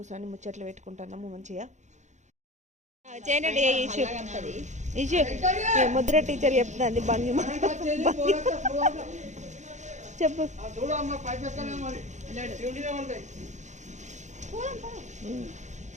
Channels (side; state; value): left; late; 0.34 ms